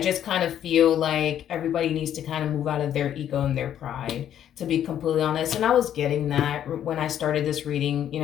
just kind of feel like everybody needs to kind of move out of their ego and their pride, to be completely honest. And I was getting that when I started this reading,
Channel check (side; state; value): right; quieter; 10.3 dB